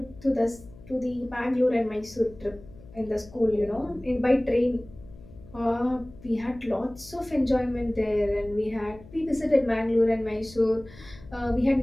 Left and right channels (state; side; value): noise; left; hum, 20 dB below the sound